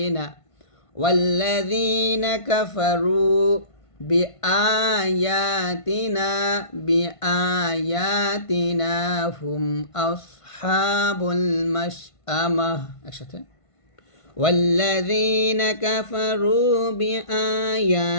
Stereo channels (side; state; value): right; late; 1.5 ms